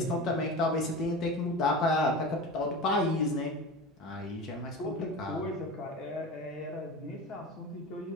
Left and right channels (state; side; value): normal; both; correlation 0.30